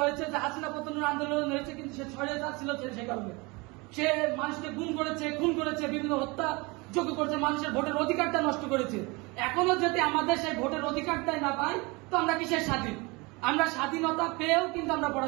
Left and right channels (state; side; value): quieter; left; 26.1 dB